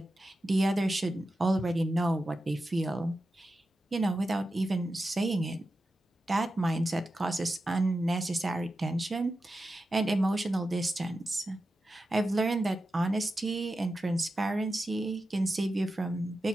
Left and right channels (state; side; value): normal; both; correlation 0.91